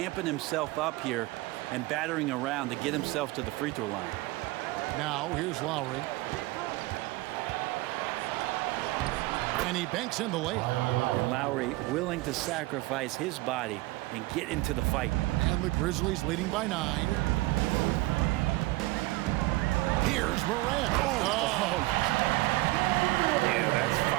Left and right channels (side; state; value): left; quieter; 20.4 dB